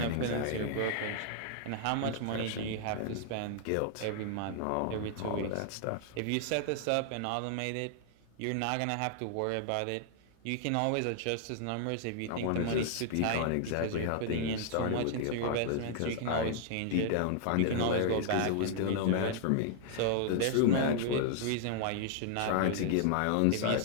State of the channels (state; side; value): different; both; correlation 0.00